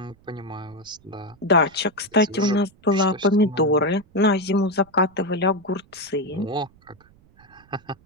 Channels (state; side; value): noise; right; rumble, 29 dB below the sound